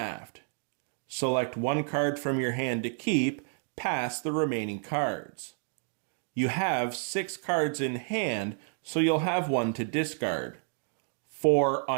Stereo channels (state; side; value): silent; left; 58 dB below the other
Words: Select one card from your hand to keep, past the remaining cards. You have 6 cards in hand, so you'll have 1 to discard. 4